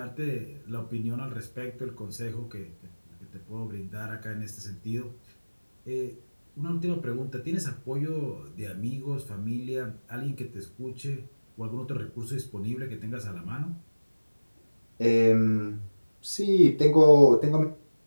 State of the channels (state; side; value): inverted; both; correlation -1.00